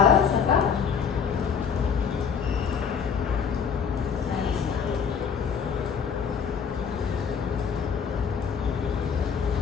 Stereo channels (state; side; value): quieter; right; 6.7 dB